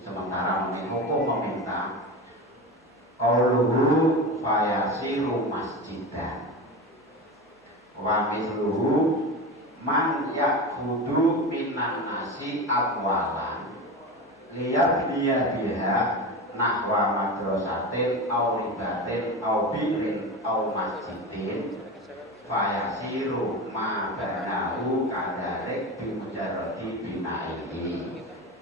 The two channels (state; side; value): normal; both; correlation 0.25